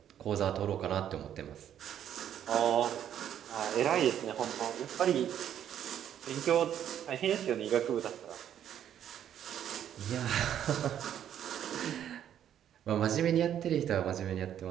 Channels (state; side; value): quieter; left; 10.1 dB